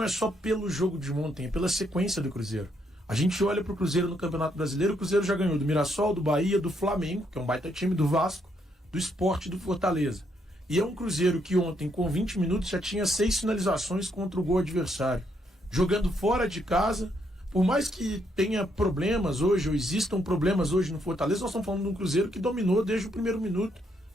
é só pelo jogo de ontem, é pela sequência do Cruzeiro. A gente olha pro Cruzeiro no Campeonato Brasileiro, o Cruzeiro já ganhou do Mirassol, do Bahia, do Flamengo, que é um baita time, do Vasco, do Sport e do Fortaleza. E é um Cruzeiro que ontem, com 20 minutos, já tinha 6 finalizações contra o gol adversário. Jogando fora de casa, por mais que tenha problemas hoje, ou existam problemas hoje no Fortaleza, nós estamos falando de um Cruzeiro que dominou desde o primeiro minuto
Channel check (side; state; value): both; normal; correlation 0.75